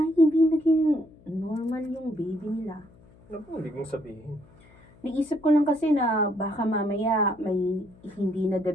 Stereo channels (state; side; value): noise; left; hum, 26 dB below the sound